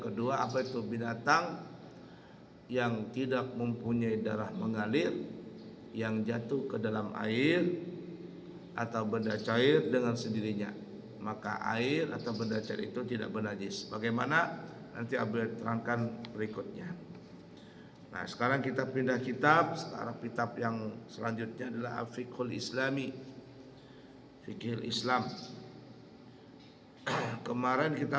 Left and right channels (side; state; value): both; identical; correlation 1.00